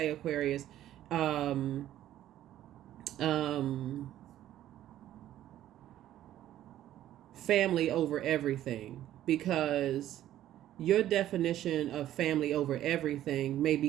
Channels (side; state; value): left; quieter; 12.7 dB